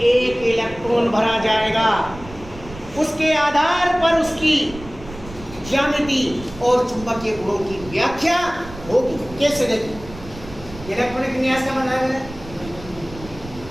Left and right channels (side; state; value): right; noise; rumble, 16 dB below the sound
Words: इलेक्ट्रॉन भरा जाएगा। उसके आधार पर उसकी ज्यामिति और चुंबकीय गुणों की व्याख्या होगी। कैसे? देखिए इलेक्ट्रॉनिक विन्यास का मतलब है,